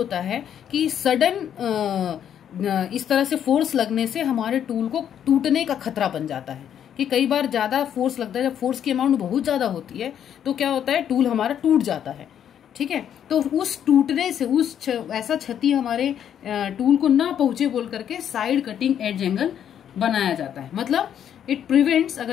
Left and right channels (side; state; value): right; quieter; 9.4 dB